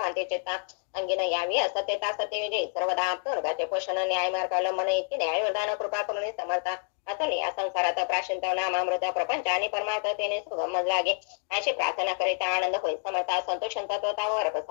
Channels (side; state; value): right; silent; digital silence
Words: चित्ता अंगीन यावी असत्यता सत्य विजयी सर्वदा आप्तवर्गाचे पोषण न्याय मार्ग मन इतके न्याय वरदान कृपा करून समर्था असं या संसारात प्राशिंत नामामृत प्रपंच आणि परमार्थतेने सुगम लागे अशी प्रार्थना करिता आनंद होईल समर्था संतोष तत्वतावर